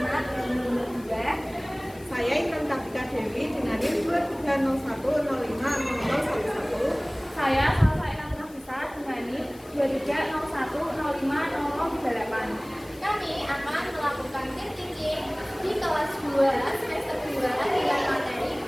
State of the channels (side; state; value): left; noise; hiss, 24 dB below the sound